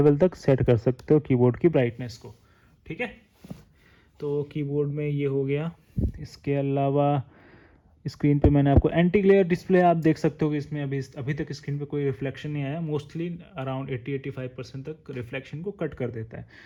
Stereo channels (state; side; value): identical; both; correlation 1.00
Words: तक सेट कर सकते हो कीबोर्ड की ब्राइटनेस को, ठीक है। तो कीबोर्ड में ये हो गया। इसके अलावा स्क्रीन पे मैंने आपको एंटी ग्लेयर डिस्प्ले, आप देख सकते हो कि इसमें अभी तक स्क्रीन पे कोई रिफ्लेक्शन नहीं आया। मोस्टली अराउंड 80-85% तक रिफ्लेक्शन को कट कर देता है,